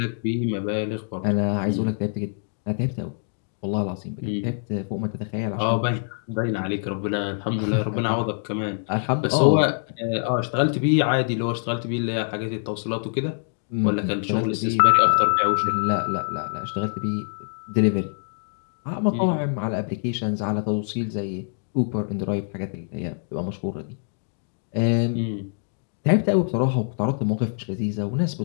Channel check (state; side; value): silent; right; digital silence